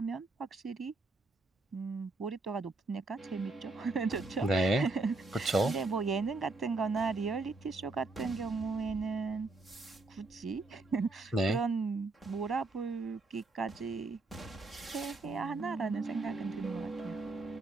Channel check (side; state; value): left; quieter; 3.3 dB